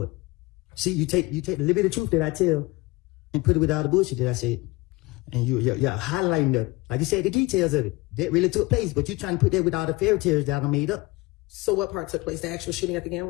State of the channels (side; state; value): right; quieter; 22.5 dB